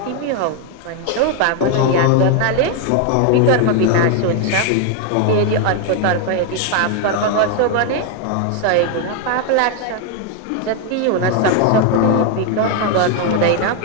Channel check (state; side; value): different; both; correlation 0.01